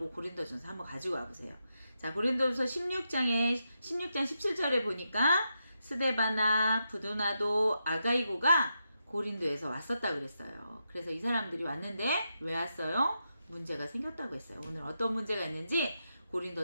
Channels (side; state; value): both; inverted; correlation -0.85